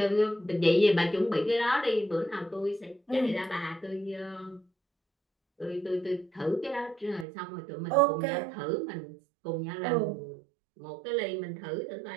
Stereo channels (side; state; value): left; drops out; at 7.2 s